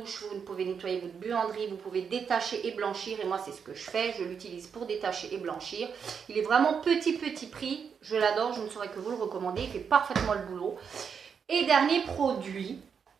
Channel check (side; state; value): left; quieter; 6.7 dB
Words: vous pouvez nettoyer votre buanderie, vous pouvez détacher et blanchir, et moi c'est ce que je fais, je l'utilise pour détacher et blanchir. Il est vraiment petit prix, je l'adore, je ne saurais que vous le recommander, il fait parfaitement le boulot. Et dernier produit,